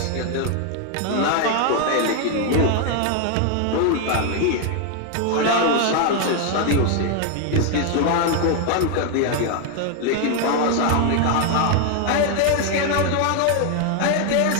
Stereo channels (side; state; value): both; different; correlation 0.00